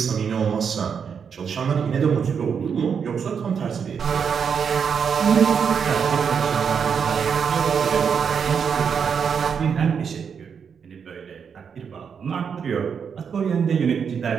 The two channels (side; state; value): left; quieter; 6.8 dB